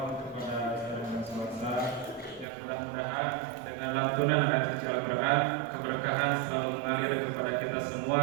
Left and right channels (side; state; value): left; drops out; at 2.5 s